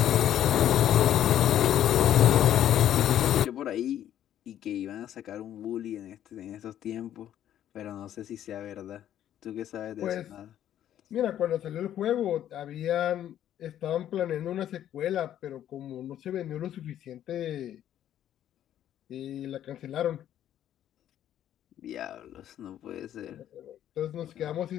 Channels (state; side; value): quieter; right; 11.2 dB